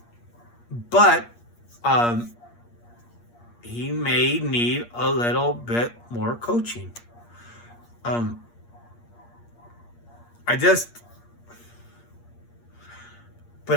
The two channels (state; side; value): late; right; 8.5 ms